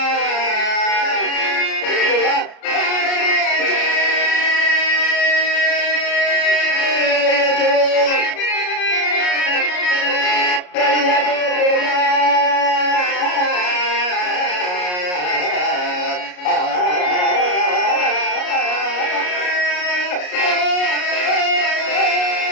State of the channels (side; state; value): right; late; 33 ms